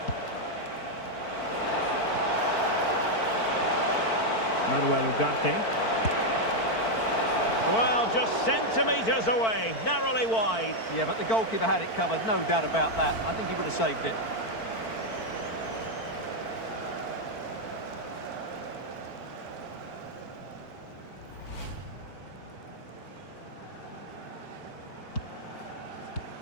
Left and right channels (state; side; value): late; right; 4.5 ms